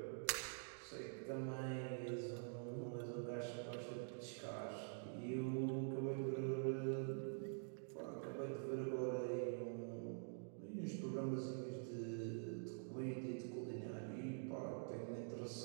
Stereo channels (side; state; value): left; silent; digital silence